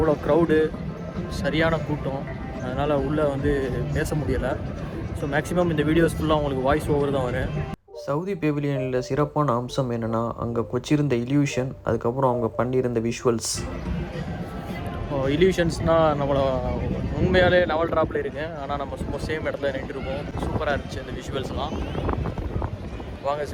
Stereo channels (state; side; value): identical; both; correlation 1.00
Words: க்ரௌடு, சரியான கூட்டம், அதனால் உள்ளே வந்து பேச முடியலை. ஸோ மேக்ஸிமம் இந்த வீடியோஸ் ஃபுல்லாக உங்களுக்கு வாய்ஸ் ஓவர் தான் வரும். சவுதி பெவிலியனில் சிறப்பான அம்சம் என்னென்னா, அங்கே கொச்சிருந்த இல்யூஷன், அதுக்கப்புறம் அவங்க பண்ணியிருந்த விஷுவல்ஸ். இல்யூஷன்ஸ்னால் நம்மளை உண்மையாலே லெவல் ட்ராப்பில் இருக்குது, ஆனால் நம்ம சும்மா சேம் இடத்துல நின்றுருக்கோம். சூப்பராக இருந்துச்சு இந்த விஷுவல்ஸ்லாம். வாங்க